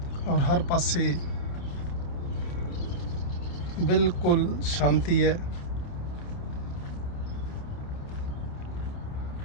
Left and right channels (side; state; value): right; late; 28 ms